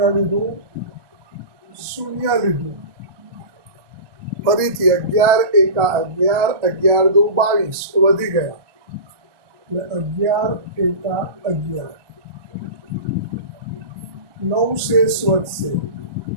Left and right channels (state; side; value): late; left; 1.2 ms